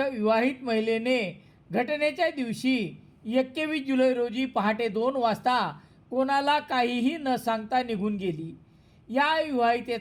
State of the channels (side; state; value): both; identical; correlation 1.00